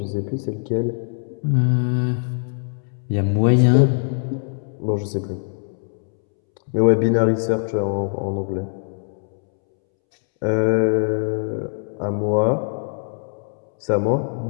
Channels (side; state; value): right; silent; 64 dB below the other